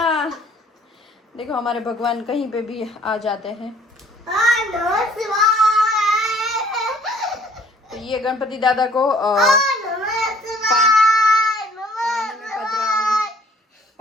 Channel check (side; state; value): both; normal; correlation 0.57